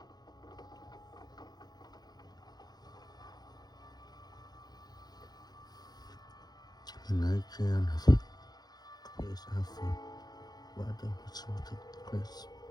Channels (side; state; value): right; late; 0.19 ms